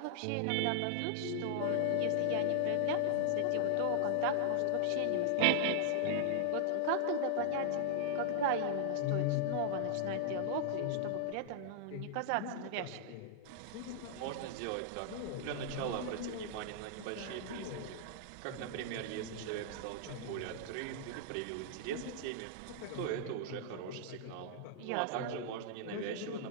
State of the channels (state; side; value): different; both; correlation -0.01